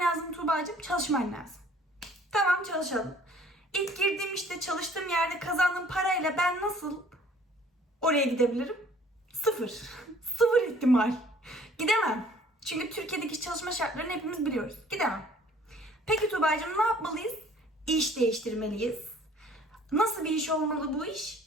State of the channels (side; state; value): both; normal; correlation 0.55